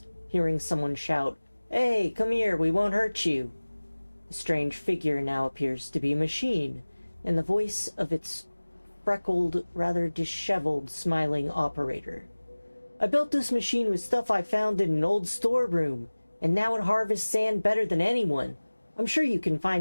hearing someone shout, "Hey, come here, we won't hurt you." The strange figure now appears to be a machine, and the voice of its freckled, rather disheveled, smiling operator. "I built this machine with stuff I found in an old storeroom, and now it harvests sand better than anyone. I'm sure you can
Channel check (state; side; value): inverted; both; correlation -1.00